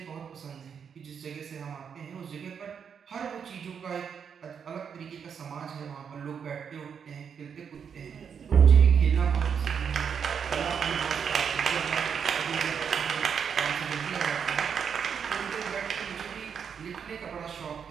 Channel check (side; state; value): left; quieter; 7.1 dB